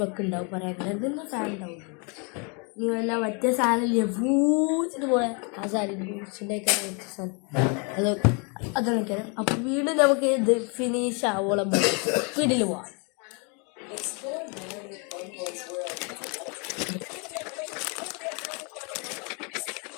വെക്കുന്നുണ്ടാവും, പറയാൻ ഇതൊന്നും ഫാൻ ഉണ്ടാവും. നീ വല്ല മറ്റേ സാധനമില്ലേ പൂച്ചിട്ട് പോയ ആ സാധനം പൂച്ചിൻ്റെ അതൊക്കെ. അപ്പം വീണ്ടും നമുക്ക് ഇത് ഫിനിഷ് ആവോളം വീട്ടിൽ പോവാം.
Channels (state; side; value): quieter; right; 34.3 dB